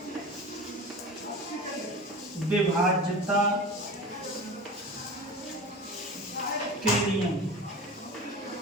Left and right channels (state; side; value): normal; both; correlation 0.33